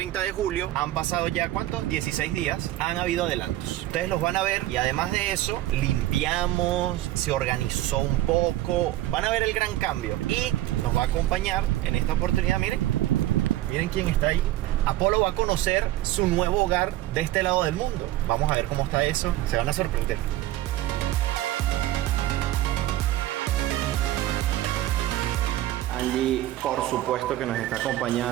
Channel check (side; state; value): left; quieter; 14.9 dB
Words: de julio, han pasado ya, ¿cuántos? 16 días. Han habido adelantos. Ustedes los van a ver y además de eso, limpiamos, se organizó un poco. Van a ver el gran cambio y nos va a acompañar en esta oportunidad, miren quién está ahí. Apolo va a conocer su nuevo hogar de este lado del mundo. Vamos a ver cómo está eso. Se van a sorprender. Angie, por supuesto que nos está